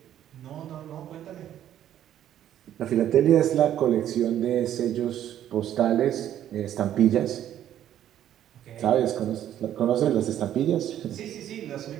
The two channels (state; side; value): quieter; left; 11.2 dB